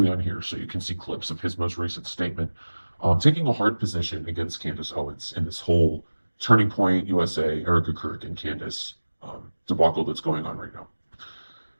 on here so you can see clips of his most recent statement, taking a hard position against Candace Owens in this whole Turning Point USA, Erica Kirk, and Candace debacle that's going on right now.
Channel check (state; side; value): inverted; both; correlation -1.00